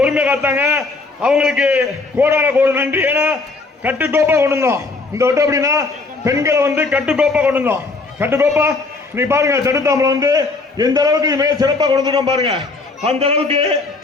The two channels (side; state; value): right; quieter; 3.7 dB